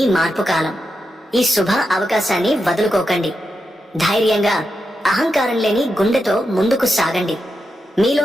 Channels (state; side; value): normal; both; correlation 0.87